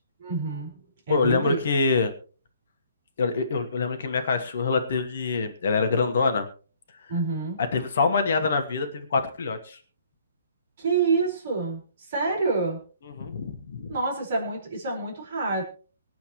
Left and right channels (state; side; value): inverted; both; correlation -0.59